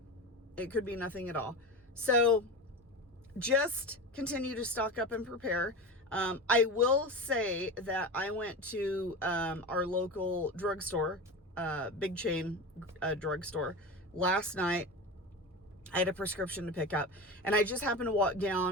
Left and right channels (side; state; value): both; normal; correlation 0.26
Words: It could be nothing at all. So just continue to stock up and prepare. I will say that I went to our local drugstore, big chain drugstore, last night. I had a prescription to pick up, and I just happened to walk